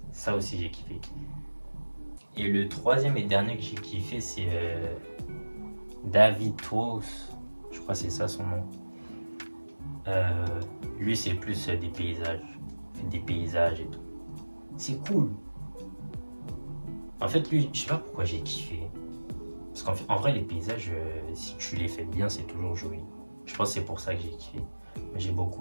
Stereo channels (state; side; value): inverted; both; correlation -1.00